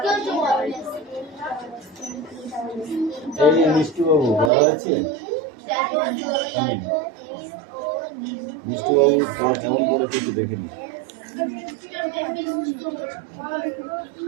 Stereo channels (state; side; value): drops out; left; at 4.5 s